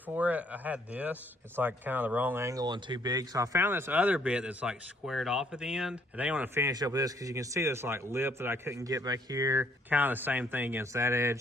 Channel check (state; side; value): normal; both; correlation 0.66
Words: it. I had this. It's like kind of the wrong angle and too big. So I found this other bit that's like squared off at the end. And I want to finish up with this because you can see this like lip that I couldn't get back here. Kind of the same thing against that edge.